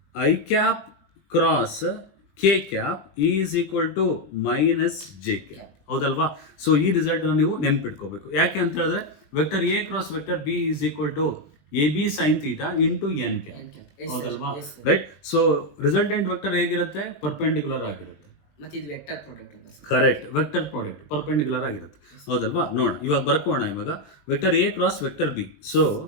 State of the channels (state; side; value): late; right; 20 ms